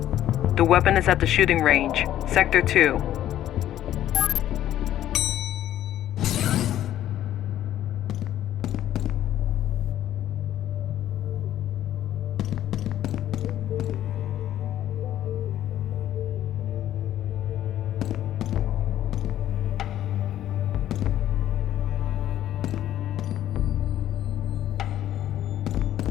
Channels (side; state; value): right; quieter; 12.2 dB